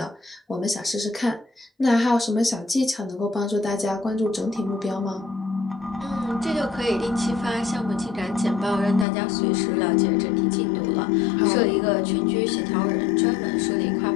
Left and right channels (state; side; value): drops out; right; at 9.1 s